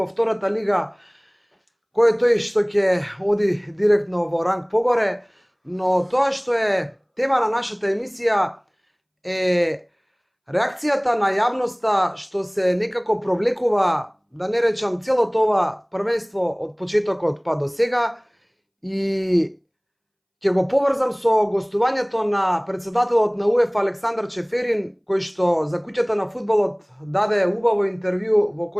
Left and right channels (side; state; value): both; identical; correlation 1.00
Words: втората лига, кој е тој што ќе оди директно во ранг погоре, но тоа што е тема на нашата емисија е реакцијата на јавноста што се некако провлекува, да не речам, целото ова првенство од почетокот па до сега, и ќе го поврзам со гостувањето на председателот на УЕФА Александар Чеферин, кој што за куќата на фудбалот даде убаво интервју во